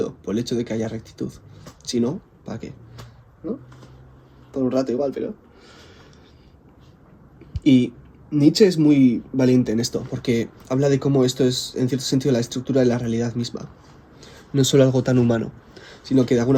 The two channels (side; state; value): both; identical; correlation 1.00